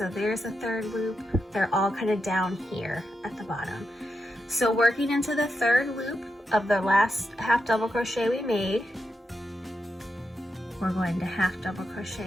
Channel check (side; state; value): both; normal; correlation 0.86